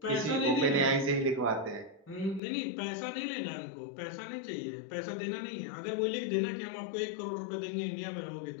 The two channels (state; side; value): drops out; right; at 2.4 s